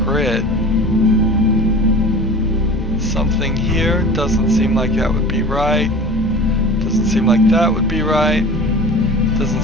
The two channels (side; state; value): both; normal; correlation 0.37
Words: Something here doesn't seem like that would be right. Doesn't seem like that would be right. Doesn't